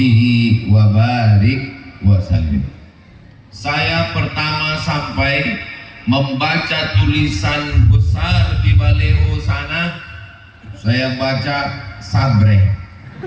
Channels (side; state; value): both; identical; correlation 1.00